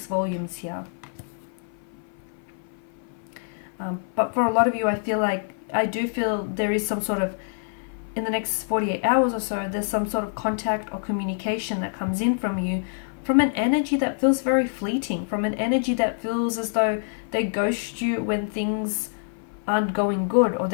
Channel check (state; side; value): silent; right; 55 dB below the other